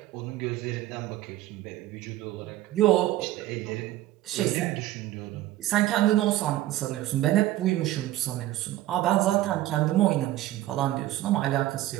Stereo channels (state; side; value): quieter; left; 15.2 dB